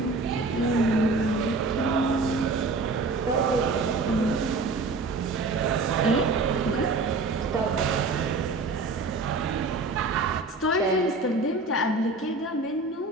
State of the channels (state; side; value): quieter; left; 3.5 dB